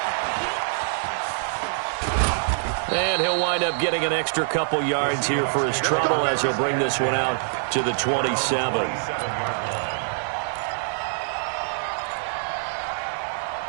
And he'll wind up getting an extra couple yards here for his trouble as he'll bring this one out to the 27.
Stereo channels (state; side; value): silent; left; digital silence